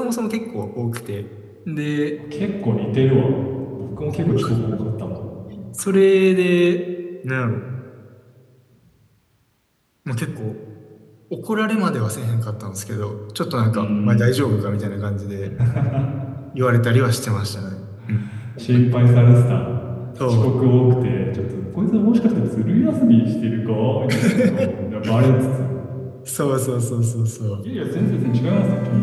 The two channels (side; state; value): both; identical; correlation 1.00